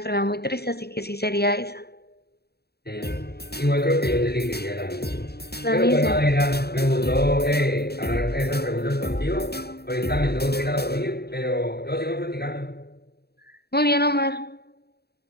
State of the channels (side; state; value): right; late; 0.47 ms